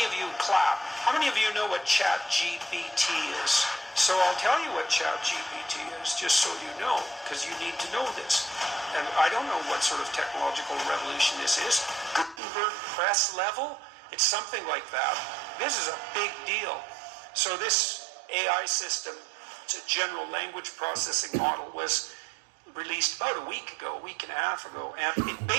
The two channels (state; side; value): drops out; left; at 12.4 s